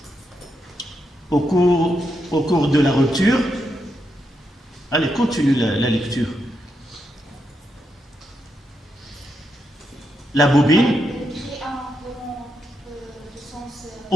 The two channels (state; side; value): normal; both; correlation 0.83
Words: Au cours de la rupture. Allez, continue la lecture. La bobine